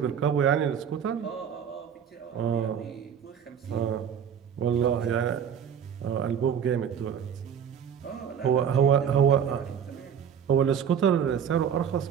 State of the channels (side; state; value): left; quieter; 8.0 dB